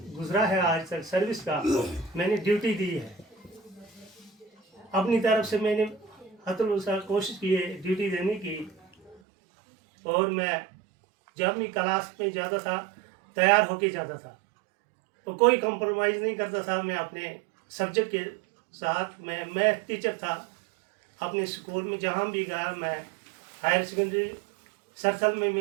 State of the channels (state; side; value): drops out; left; at 9.2 s